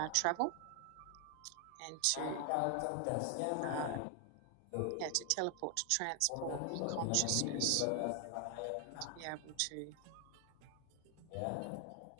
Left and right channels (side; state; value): both; different; correlation 0.00